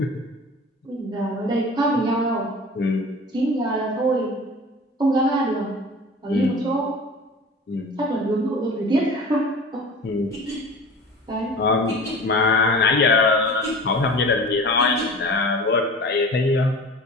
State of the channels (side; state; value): both; normal; correlation 0.38